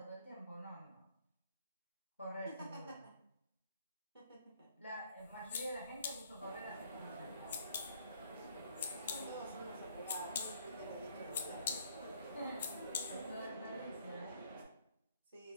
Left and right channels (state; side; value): inverted; both; correlation -0.63